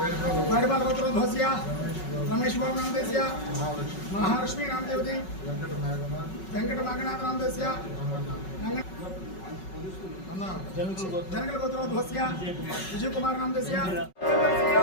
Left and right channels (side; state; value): right; late; 5.4 ms